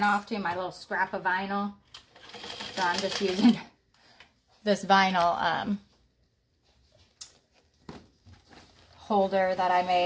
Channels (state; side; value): identical; both; correlation 1.00